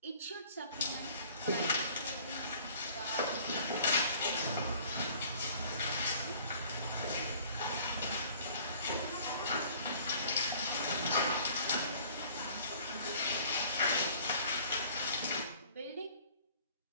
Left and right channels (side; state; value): both; inverted; correlation -0.53